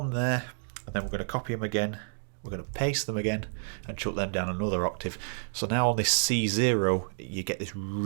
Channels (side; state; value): left; silent; digital silence